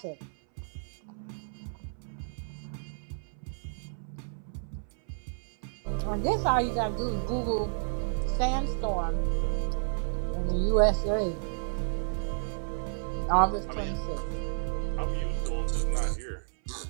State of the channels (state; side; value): silent; left; 57 dB below the other